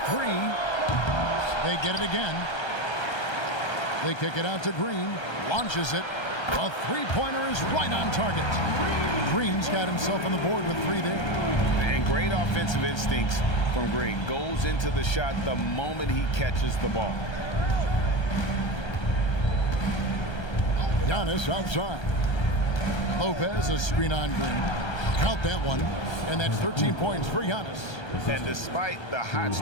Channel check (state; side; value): late; right; 1.3 ms